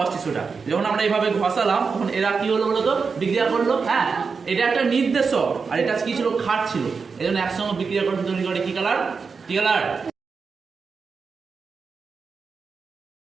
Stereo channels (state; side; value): quieter; left; 5.1 dB